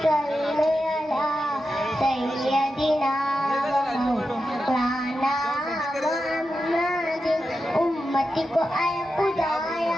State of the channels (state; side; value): normal; both; correlation 0.90